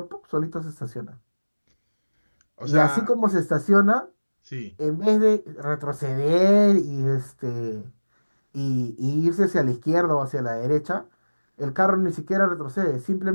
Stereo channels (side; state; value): both; inverted; correlation -1.00